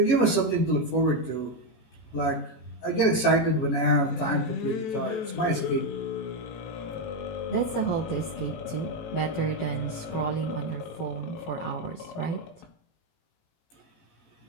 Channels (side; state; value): right; late; 18 ms